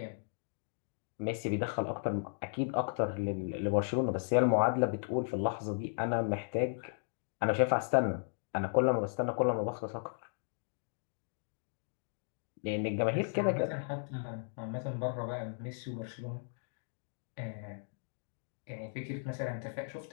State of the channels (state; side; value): silent; right; digital silence